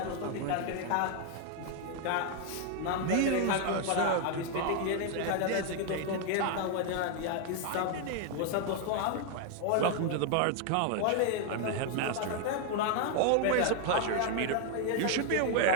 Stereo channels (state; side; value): different; both; correlation 0.00